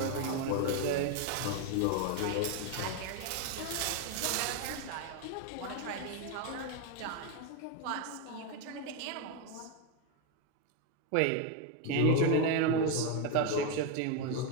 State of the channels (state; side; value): different; both; correlation 0.01